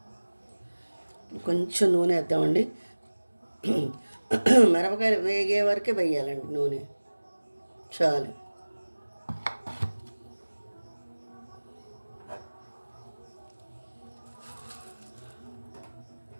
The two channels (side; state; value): both; inverted; correlation -1.00